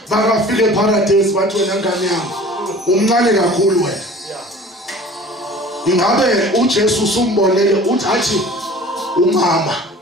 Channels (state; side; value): normal; both; correlation 0.44